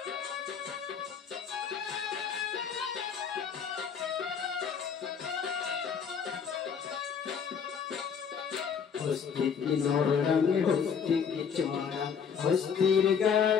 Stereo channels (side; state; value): right; quieter; 6.8 dB